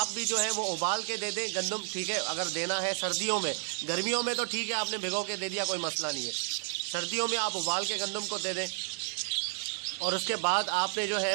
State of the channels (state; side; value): silent; left; 57 dB below the other